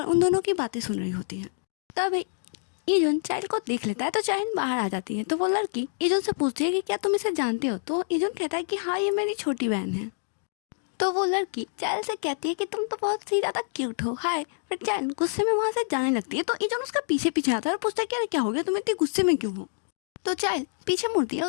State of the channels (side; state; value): right; silent; digital silence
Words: उन दोनों की बातें सुन रही होती है। तभी इजुन चाइल्ड को देख लेता है तो चाइल्ड बाहर आ जाती है। तो वो लड़की इजुन से पूछती है कि क्या तुम इसे जानते हो। तो इजुन कहता है कि हाँ ये मेरी छोटी बहन है। तो वो लड़की चाइल्ड से कहती है कि तुम तो बहुत ही ज़्यादा क्यूट हो, हाय। फिर चाइल्ड गुस्से में वहाँ से जाने लगती है। तो इजुन उसका पीछे पीछे आता है और पूछता है कि अरे क्या हो गया, तुम इतनी गुस्से में क्यों हो। तो चाइल्ड पीछे मुड़ती है,